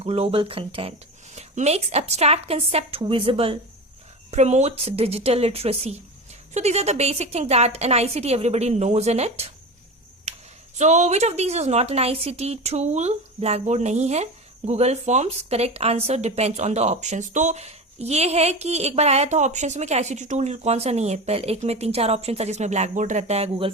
global content. Makes abstract concept visible, promotes digital literacy. So these are the basic things that an ICT everybody knows in it. So which of these is not an ICT tool? Blackboard नहीं है. Google Forms, correct answer depends on the options. तो ये है कि एक बार आया था options में कि ICT टूल कौन सा नहीं है. पहले एक में 3-4 ऑप्शन था जिसमें ब्लैकबोर्ड रहता है, गूगल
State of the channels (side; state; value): both; normal; correlation 0.26